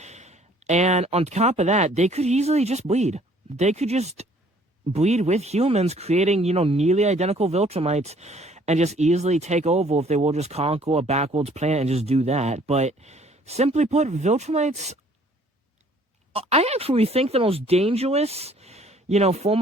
And on top of that, they could easily just bleed. They could just bleed with humans, creating, nearly identical Viltrumites, and just easily take over if they will just conquer a backwards planet and just do that. But simply put, Viltrumites, I actually think the most dangerous, form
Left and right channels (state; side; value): normal; both; correlation 0.58